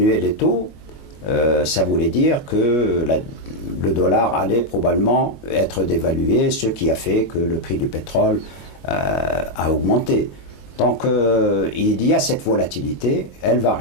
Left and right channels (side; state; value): right; late; 22 ms